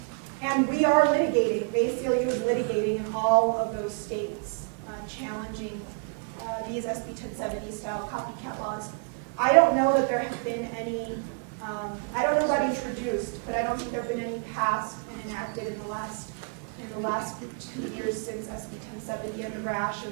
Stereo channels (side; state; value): left; quieter; 37.6 dB